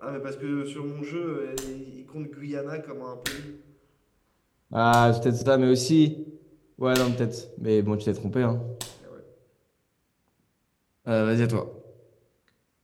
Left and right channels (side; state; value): both; identical; correlation 1.00